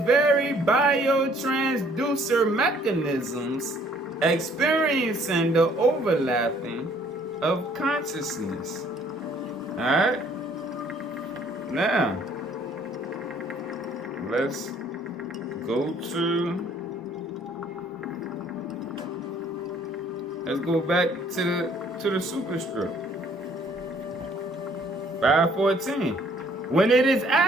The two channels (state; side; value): normal; both; correlation 0.60